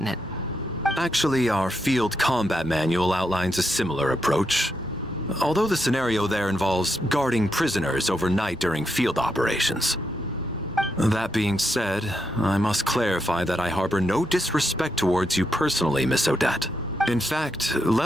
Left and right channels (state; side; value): normal; both; correlation 0.81